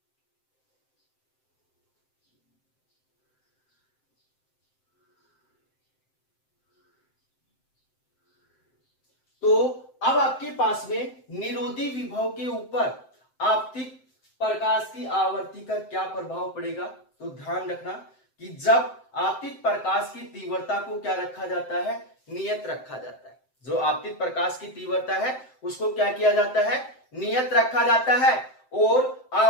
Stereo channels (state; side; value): late; right; 7.7 ms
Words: तो अब आपके पास में निरोधी विभव के ऊपर आपतित प्रकाश की आवर्ती का क्या प्रभाव पड़ेगा। तो ध्यान रखना कि जब आपतित प्रकाश की तीव्रता को क्या रखा जाता है, नियत रखा जाता है। जो आपतित प्रकाश की तीव्रता है उसको क्या किया जाता है, नियत रखा जाता है और